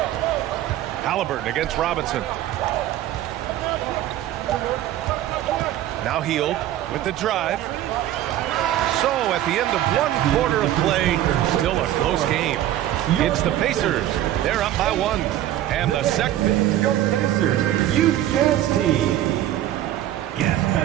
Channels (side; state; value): left; quieter; 13.0 dB